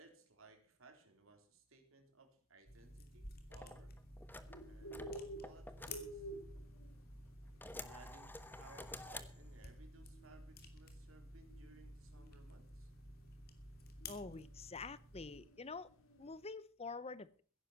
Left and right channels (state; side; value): normal; both; correlation 0.31